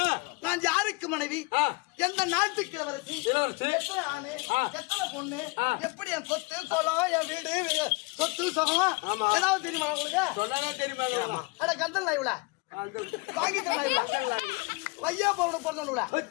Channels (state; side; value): quieter; right; 26.9 dB